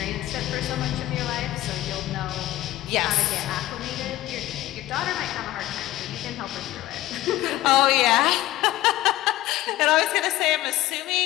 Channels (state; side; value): quieter; right; 15.7 dB